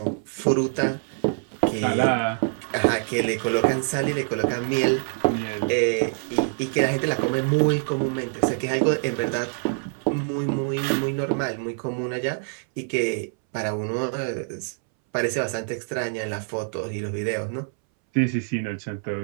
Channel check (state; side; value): silent; left; 62 dB below the other